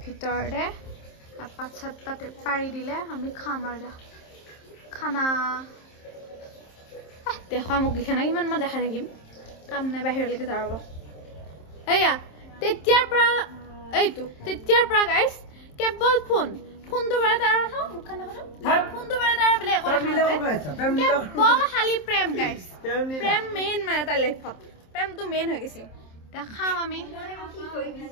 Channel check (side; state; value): right; late; 27 ms